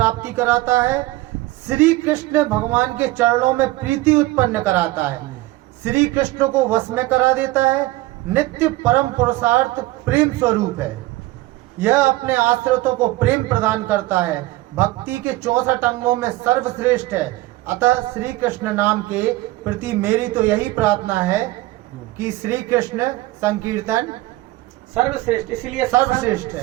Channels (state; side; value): quieter; left; 18.4 dB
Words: कराता है, श्री कृष्ण भगवान के चरणों में प्रीति उत्पन्न कराता है, श्री कृष्ण को वश में करा देता है, नित्य परम पुरुषार्थ प्रेम स्वरूप है। यह अपने आश्रितों को प्रेम प्रदान करता है, भक्ति के 64 अंगों में सर्वश्रेष्ठ है। अतः श्री कृष्ण नाम के प्रति मेरी तो यही प्रार्थना है कि श्री कृष्ण संकीर्तन सर्वश्रेष्ठ, इसलिए सर्वश्रेष्ठ